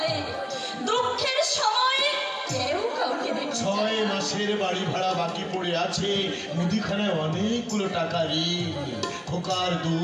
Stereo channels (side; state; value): both; identical; correlation 1.00